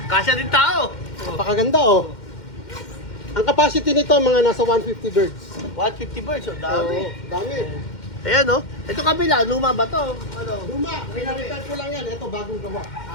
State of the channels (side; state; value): right; late; 2.1 ms